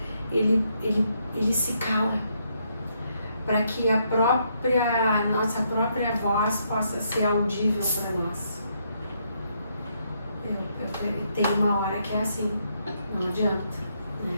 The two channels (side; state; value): both; inverted; correlation -0.75